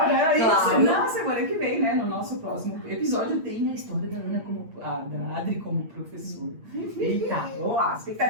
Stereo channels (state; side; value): late; left; 8.8 ms